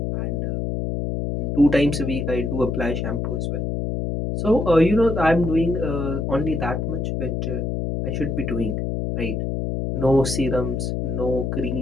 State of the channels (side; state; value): left; noise; hum, 1 dB below the sound